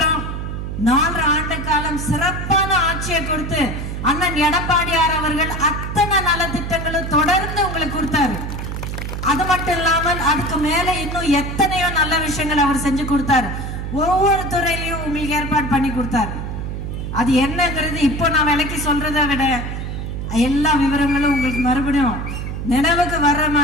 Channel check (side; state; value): right; noise; hum, 5 dB below the sound